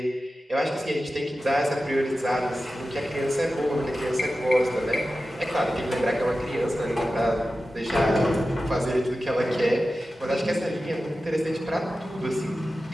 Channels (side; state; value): both; normal; correlation 0.94